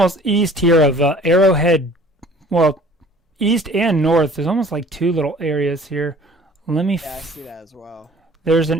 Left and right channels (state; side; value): normal; both; correlation 0.50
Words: east here of Arrowhead. Well, east and north. There's almost like two little areas here. Let me. Yeah, I see that as well. There's